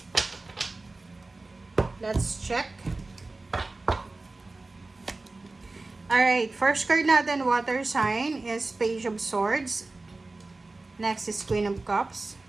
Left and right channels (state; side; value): quieter; left; 3.3 dB